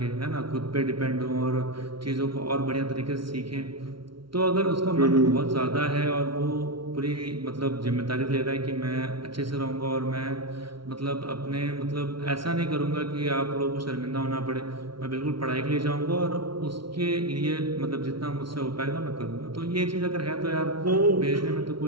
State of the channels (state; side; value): late; left; 0.74 ms